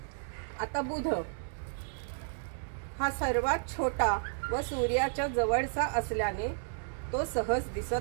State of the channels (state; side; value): silent; left; 56 dB below the other